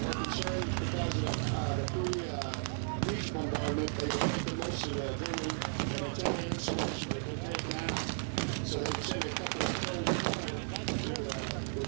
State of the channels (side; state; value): left; silent; 55 dB below the other